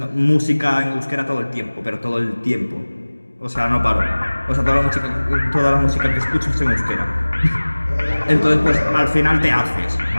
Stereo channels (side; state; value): both; inverted; correlation -1.00